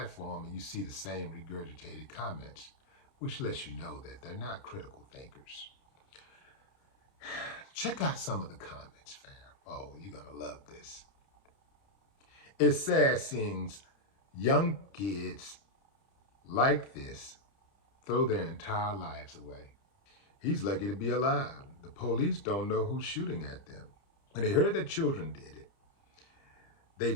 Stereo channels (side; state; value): right; late; 30 ms